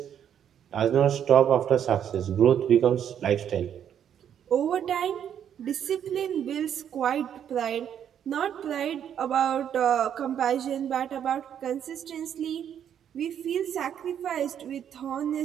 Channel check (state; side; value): quieter; left; 9.2 dB